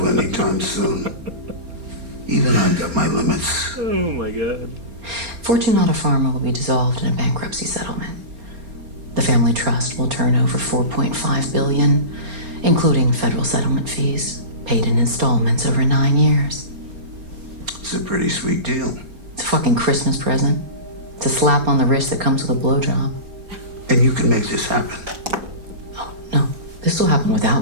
anytime soon? Even I've got my limits. Oh my God. Fortunata Pharma will be dissolved in a bankruptcy settlement. The family trust will turn over $4.5 billion, including federal settlement fees, paid in installments over 9 years. It's a pretty sweet deal. It's a fucking Christmas present. It's a slap on the wrist that comes with a blowjob. And you can make this happen. Oh, no. This will happen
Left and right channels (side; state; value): left; late; 4.3 ms